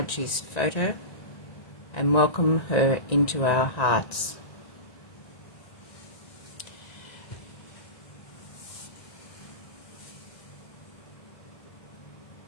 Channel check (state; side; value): late; right; 1.8 ms